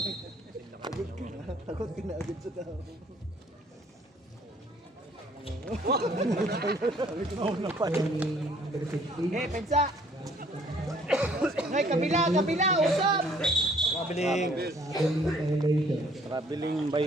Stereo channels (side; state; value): both; normal; correlation 0.60